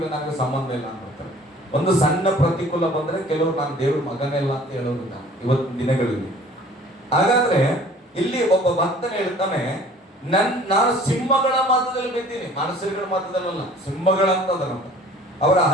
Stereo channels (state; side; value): normal; both; correlation 0.50